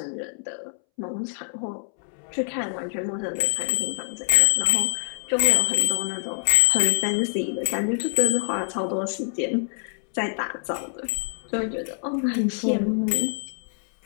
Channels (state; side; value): silent; right; 62 dB below the other